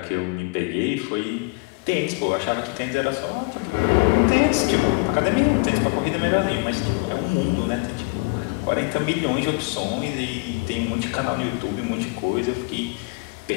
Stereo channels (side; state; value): right; quieter; 28.5 dB